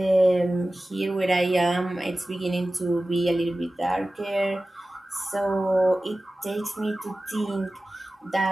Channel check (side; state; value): both; normal; correlation 0.96